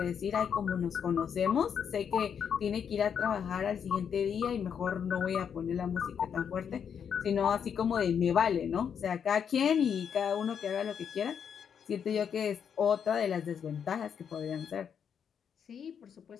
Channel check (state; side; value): quieter; right; 7.6 dB